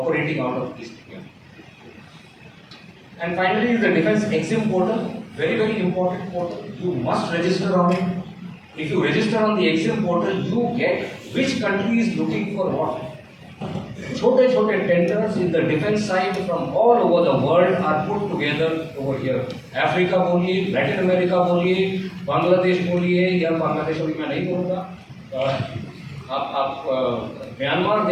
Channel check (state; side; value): identical; both; correlation 1.00